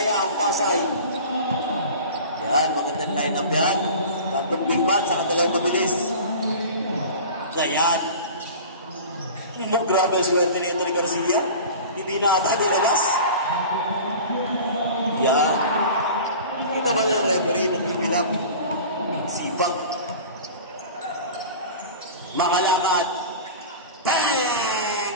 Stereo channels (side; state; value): both; inverted; correlation -0.37